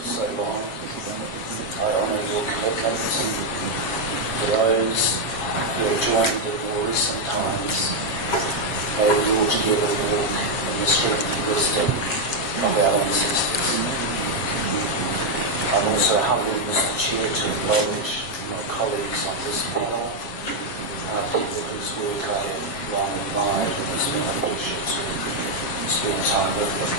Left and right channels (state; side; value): late; right; 7.3 ms